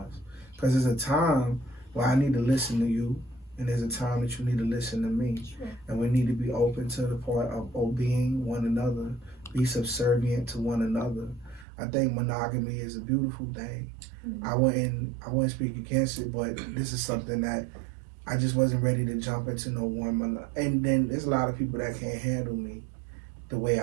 because there's a time where I need to listen to you. And there's a time that you need to listen to me. Sure. And we need to be open to the part of obeying one another, be subservient to one another. I think monogamy is a beautiful thing. Mm-hmm. I wouldn't speak against it, but this is something that I just wasn't ready to jump into no one. And then there's a lot of people that can't handle me the way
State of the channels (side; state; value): left; drops out; at 11.7 s